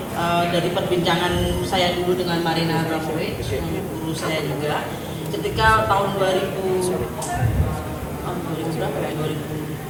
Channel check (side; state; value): both; identical; correlation 1.00